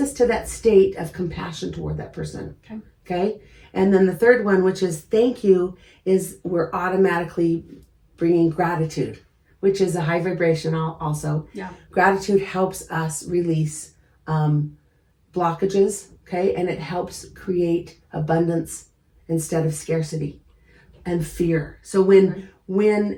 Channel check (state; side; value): identical; both; correlation 1.00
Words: us to that state of compassion toward that person. Okay? And then the third one, which is thank you, is we're automatically bringing gratitude, which is a high vibration also. Yeah. Gratitude helps us release blockages, okay? And it helps create abundance instead of scarcity and fear. So when